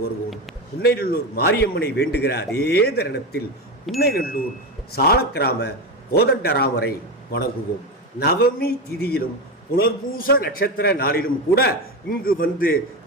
வருவோம். புன்னைநல்லூர் மாரியம்மனை வேண்டுகிற அதே தருணத்தில் புன்னைநல்லூர் சாலக்கிராம கோதண்டராமரை வணங்குவோம். நவமி திதியிலும் புனர்பூச நட்சத்திர நாளிலும் கூட இங்கு வந்து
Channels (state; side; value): normal; both; correlation 0.17